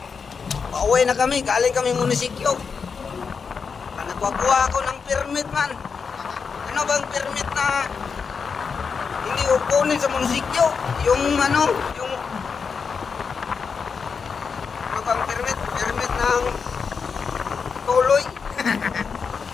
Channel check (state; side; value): quieter; right; 5.7 dB